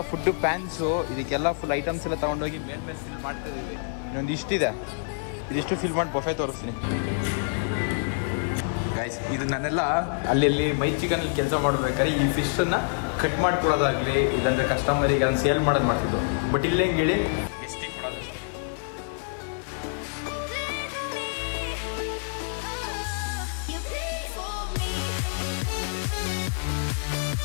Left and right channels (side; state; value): right; silent; digital silence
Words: ಫುಡ್ ಪ್ಯಾನ್ಸು, ಇದಕ್ಕೆಲ್ಲ ಫುಲ್ ಐಟಮ್ಸ್ ಎಲ್ಲ ತಗೊಂಡೋಗಿ ಮೇಲ್ಮೇಲೆ ಫಿಲ್ ಮಾಡ್ತಾ ಇದೀವಿ. ಇನ್ನೊಂದು ಇಷ್ಟಿದೆ, ಇದಿಷ್ಟು ಫಿಲ್ ಮಾಡಿ ಬಫೆ ತೋರಿಸ್ತೀನಿ ಗೈಸ್. ಇದು ನಾನೆಲ್ಲ ಅಲ್ಲಿ ಮೈ ಚಿಕನ್ ಕೆಲಸ ಮಾಡ್ಬೇಕಾದ್ರೆ ಈ ಫಿಶನ್ನು ಕಟ್ ಮಾಡ್ಕೊಡೋದಾಗಲಿ, ಇಲ್ಲಾಂದ್ರೆ ಕಸ್ಟಮರಿಗೆ ಅದನ್ನು ಸೇಲ್ ಮಾಡೋದು ಮಾಡ್ತಿದ್ದು. ಬಟ್ ಇಲ್ಲೇ ಹೇಳಿ ಗೆಸ್ಟಿಗೆ ಕೊಡೋದಷ್ಟೇ.